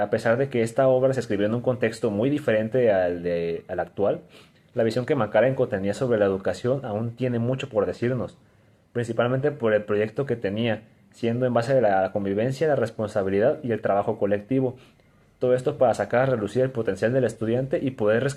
pesar de que esta obra se escribió en un contexto muy diferente al actual, la visión que Makarenko tenía sobre la educación aún tiene mucho por decirnos, principalmente por el proyecto que tenía, siendo en base a la convivencia, la responsabilidad y el trabajo colectivo. Todo esto para sacar a relucir el potencial del estudiante y poder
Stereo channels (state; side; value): identical; both; correlation 1.00